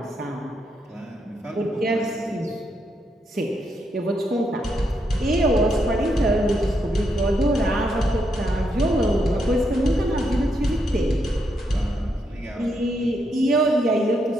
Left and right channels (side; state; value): both; normal; correlation 0.79